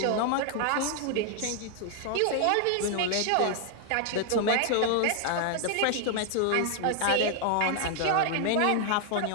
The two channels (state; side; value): different; both; correlation 0.00